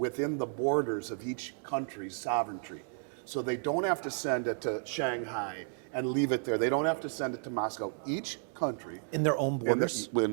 the borders of each country's sovereignty. So they don't have to send it to Shanghai and leave it there. They don't have to send it to Moscow. Each country In their own borders? in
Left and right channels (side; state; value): left; silent; 56 dB below the other